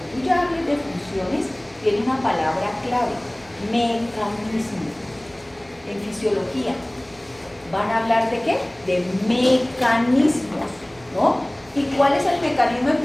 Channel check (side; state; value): right; noise; hum, 28 dB below the sound